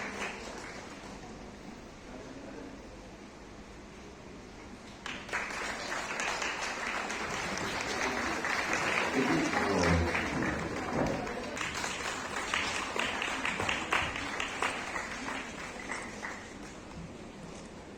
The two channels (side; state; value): both; identical; correlation 1.00